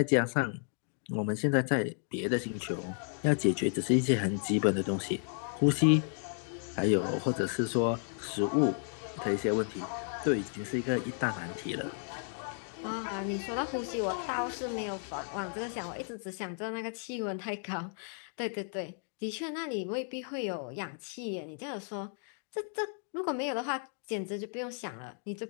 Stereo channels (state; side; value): silent; right; 56 dB below the other